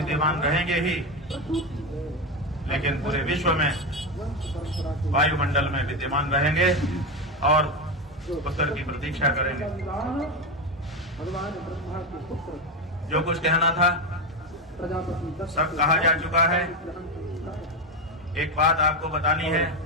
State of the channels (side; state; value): both; normal; correlation 0.13